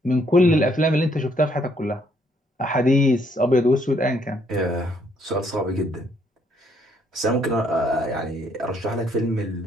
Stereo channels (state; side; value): normal; both; correlation 0.69